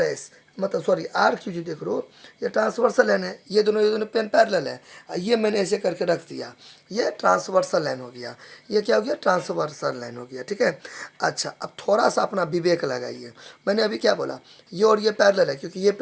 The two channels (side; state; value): both; identical; correlation 1.00